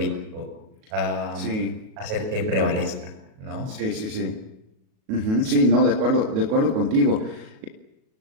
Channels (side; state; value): left; late; 37 ms